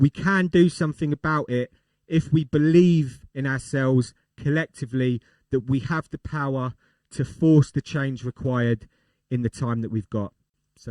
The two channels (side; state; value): both; identical; correlation 1.00